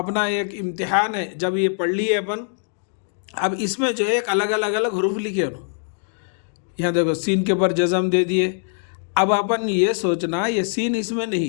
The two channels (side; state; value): right; silent; digital silence